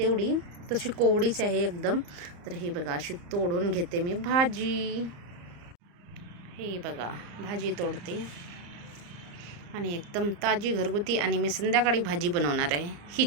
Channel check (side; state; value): left; late; 34 ms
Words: तशी कोवडीच आहे एकदम. तर हे बघा अशी तोडून घेते मी भाजी. हे बघा भाजी तोडते आणि एकदम ताजी घरगुती. आणि मी संध्याकाळी भाजी बनवणार आहे,